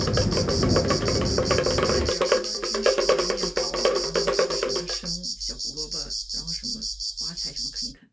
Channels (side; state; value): both; normal; correlation 0.97